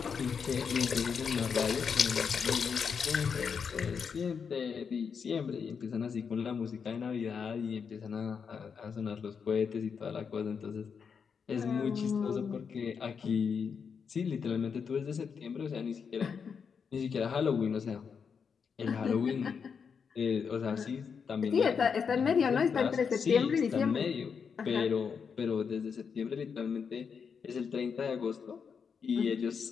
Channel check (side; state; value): right; quieter; 6.3 dB